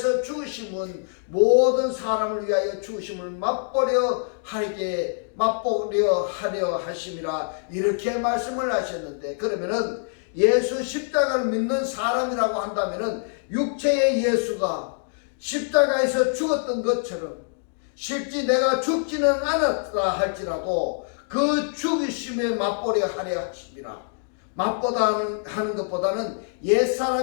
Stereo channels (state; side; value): silent; right; digital silence